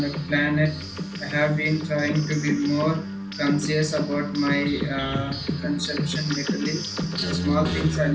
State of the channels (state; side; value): identical; both; correlation 1.00